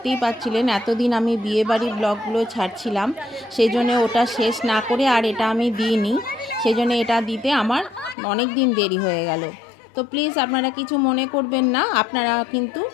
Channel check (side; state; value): right; drops out; at 8.2 s